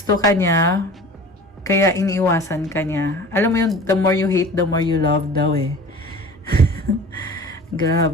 ka niya, kaya iniiwasan ka niya. Alam mo yung the more you hate, the more you love daw eh.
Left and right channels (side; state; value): both; normal; correlation 0.41